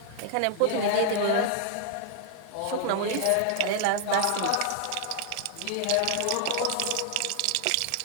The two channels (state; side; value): different; both; correlation 0.00